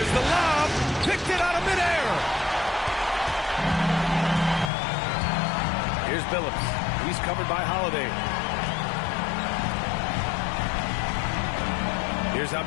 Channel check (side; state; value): right; drops out; at 4.7 s